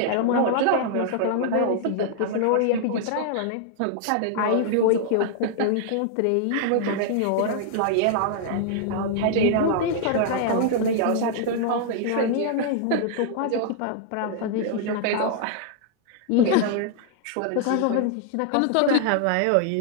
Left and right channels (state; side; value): different; both; correlation -0.01